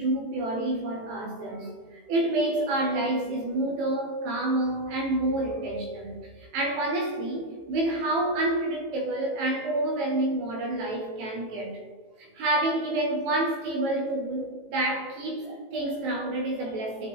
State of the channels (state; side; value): late; left; 18 ms